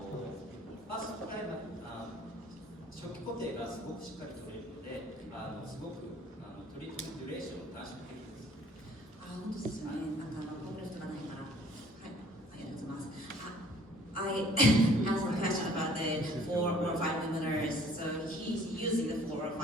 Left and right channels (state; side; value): normal; both; correlation 0.56